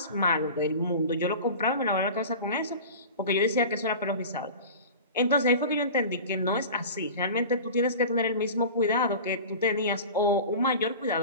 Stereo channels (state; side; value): inverted; both; correlation -0.35